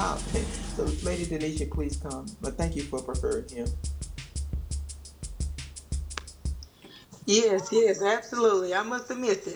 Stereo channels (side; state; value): both; identical; correlation 1.00